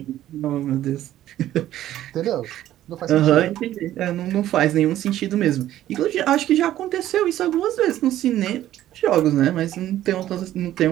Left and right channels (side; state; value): left; quieter; 13.1 dB